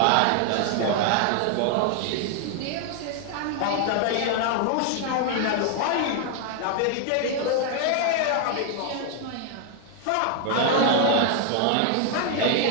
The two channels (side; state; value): both; different; correlation 0.00